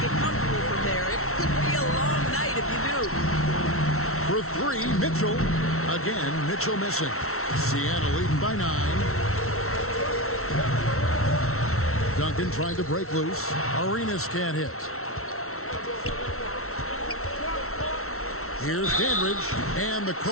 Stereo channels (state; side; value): late; right; 0.63 ms